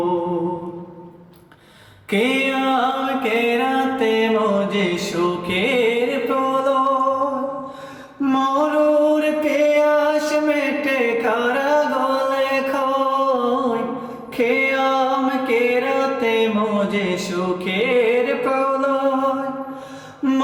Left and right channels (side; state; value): both; identical; correlation 1.00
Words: কিয়াম কেরাতে মজে সুখের প্রলয়, মরুর পেয়াস মেটে কারা গলে খয়। কিয়াম কেরাতে মজে সুখের প্রলয়,